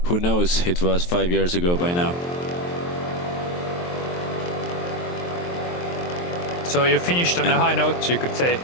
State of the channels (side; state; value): right; late; 23 ms